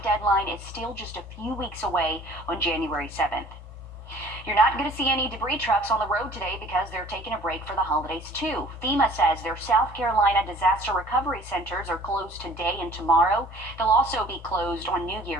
deadline is still just a few weeks away on January 7th. You're not going to see any debris trucks on the road today because they're taking a break for the holidays too. FEMA says their South Carolina disaster recovery centers are closed today and tomorrow. They'll also be closed on New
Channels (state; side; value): normal; both; correlation 0.51